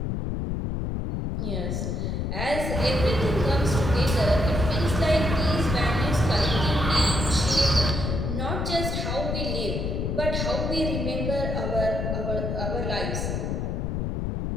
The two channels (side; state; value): left; noise; rumble, 1 dB below the sound